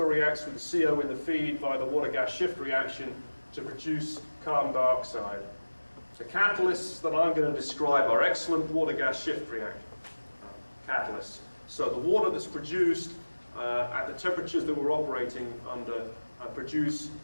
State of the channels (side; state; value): both; inverted; correlation -1.00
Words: reacts with the CO in the feed via the water-gas shift reaction to produce carbon dioxide. The catalysts that I'm going to describe are excellent water-gas shift catalysts. So the water that's produced at the temperatures that we're operating under produce